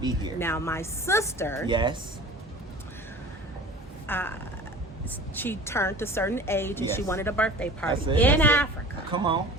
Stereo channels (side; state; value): both; normal; correlation 0.40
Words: here? Now, my sister. Yes. She turned a certain age and she wanted a birthday party in Africa. Come on.